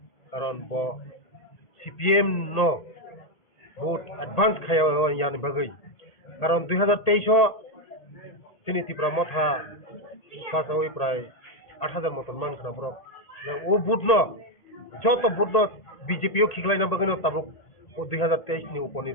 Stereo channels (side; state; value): right; late; 1.8 ms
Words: karon bo CPM no vote advance khaya yani bagai karon 2023 sini tipra motha pas oi pray 8000 moton man khana bro o vote no joto vote no BJP o khiklai na bagai no tabuk o 2023 ni